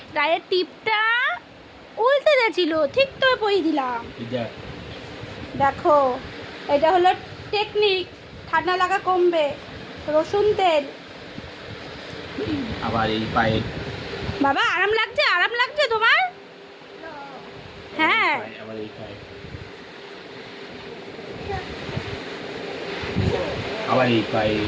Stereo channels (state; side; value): identical; both; correlation 1.00